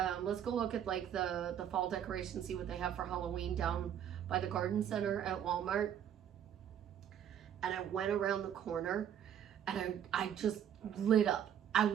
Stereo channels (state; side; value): quieter; left; 9.6 dB